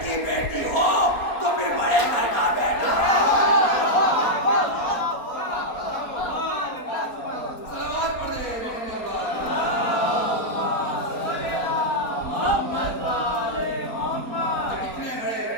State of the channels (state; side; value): late; right; 4.3 ms